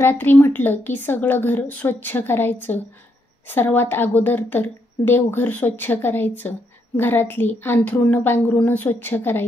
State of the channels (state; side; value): normal; both; correlation 0.77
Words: म्हटलं की सगळं घर स्वच्छ करायचं. सर्वात अगोदर तर देवघर स्वच्छ करायचं, घरातली अंथरुणं पांघरुणं स्वच्छ